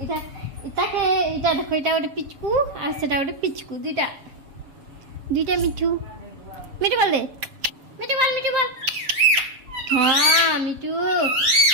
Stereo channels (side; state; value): left; late; 7.2 ms